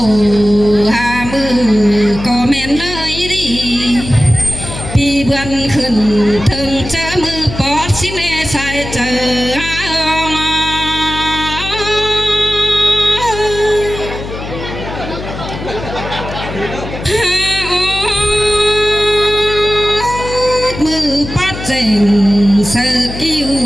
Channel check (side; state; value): left; noise; hum, 9 dB below the sound